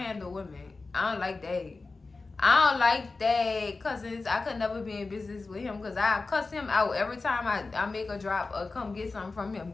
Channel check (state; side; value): quieter; right; 3.8 dB